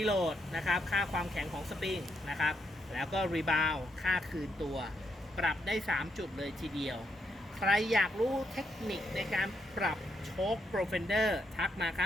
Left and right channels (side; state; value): both; normal; correlation 0.78